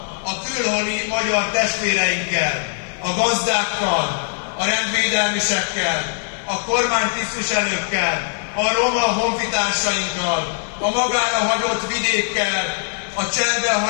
a külhoni magyar testvéreinkkel, a gazdákkal, a rendvédelmisekkel, a kormánytisztviselőkkel, a roma honfitársainkkal, a magára hagyott vidékkel, a cserbe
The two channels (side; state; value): right; silent; digital silence